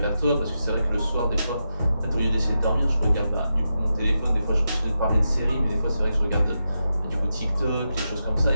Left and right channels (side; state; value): both; inverted; correlation -0.88